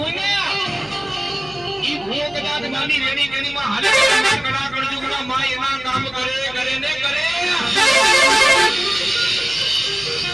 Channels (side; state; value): left; noise; hum, 23 dB below the sound